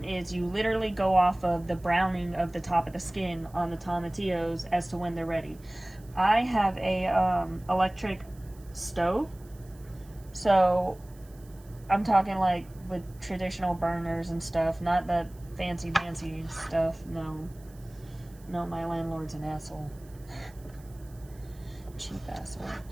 is you literally go off of the browning of the top of the skin on the tomatillos as to when they're ready. I have a electric stove, so I'm talking like with traditional burners and stuff, not the fancy stuff. No, my landlord's an asshole. Cheap asshole.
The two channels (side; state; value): right; noise; hiss, 27 dB below the sound